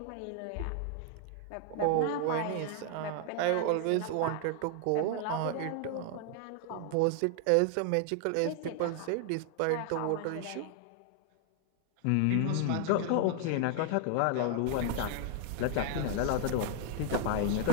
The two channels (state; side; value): different; both; correlation 0.00